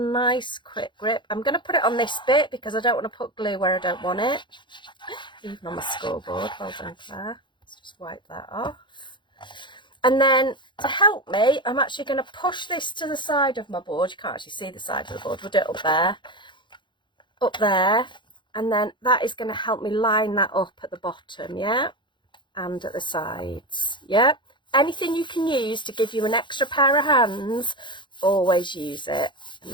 quick grip. I'm going to put it on this bit because I don't want to put glue where I don't want it. Even on my scoreboard. Well done, Claire. Let's just wipe that off. And then to help me, I'm actually going to push this to the side of my board. You can't actually see the side of the board. We'll do it up there. Up there. And then that is going to help me line that up at the bottom, yeah? And at the sides, yeah? Anything you can use to give you an extra pair of hands, always use it and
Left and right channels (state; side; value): late; right; 0.23 ms